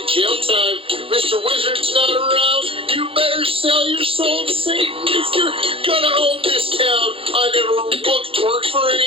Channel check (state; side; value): late; left; 0.27 ms